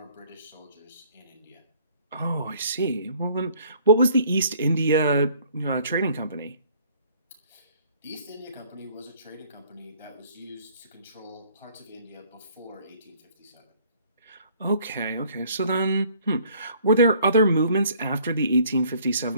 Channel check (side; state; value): both; inverted; correlation -0.57